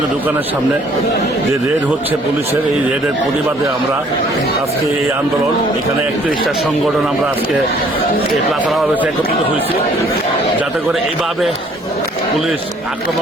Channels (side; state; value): both; normal; correlation 0.59